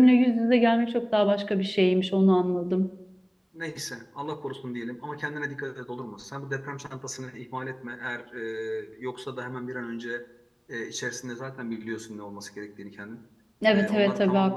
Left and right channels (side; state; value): both; identical; correlation 1.00